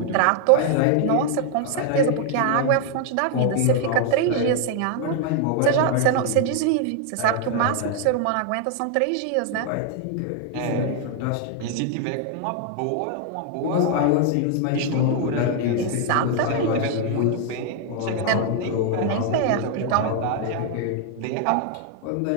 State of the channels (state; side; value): different; both; correlation 0.00